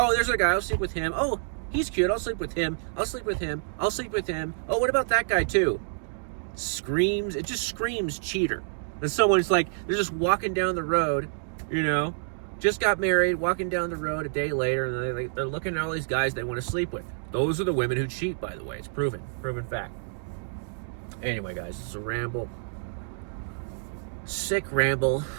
there's a guy, I'll sleep with him. Oh, he's cute, I'll sleep with him. I'll sleep with him. I'll sleep with him. Oh, what about that guy too?" It just screams cheater. And someone's like, they're just walking down the road, just got married, walking down the road a day later, and they're looking at all these guys they want to sleep with. Those are the women who cheat, by the way. It's proven fact. Anyway, guys, it's a ramble. Sick ramble.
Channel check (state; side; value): silent; left; digital silence